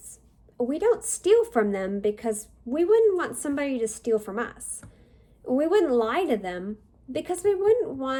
we don't steal from them because we wouldn't want somebody to steal from us. We wouldn't lie to them because we wouldn't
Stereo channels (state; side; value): identical; both; correlation 1.00